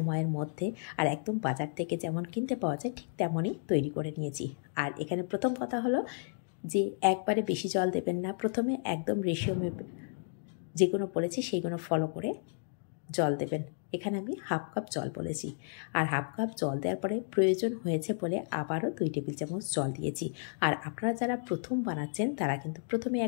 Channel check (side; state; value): right; silent; digital silence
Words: মধ্যে। আর একদম বাজার থেকে যেমন কিনতে পাওয়া যায় ঠিক তেমনই তৈরি করে নিয়েছি। আর এখানে প্রথম কথা হলো যে একবারে বেশি জল দেবেন না, প্রথমে একদম রেশিও মেপে যেগুলো বলেছি সেইগুলো ফলো করে জল দেবেন। এখানে আমি হাফ কাপ জল বলেছি, আর হাফ কাপ জল দেওয়ার পরে প্রয়োজন হয়েছে বলে আবারও 2 টেবিল চামচ জল দিয়েছি। আর আপনারা যারা প্রথম বানাচ্ছেন তারা কিন্তু প্রথমে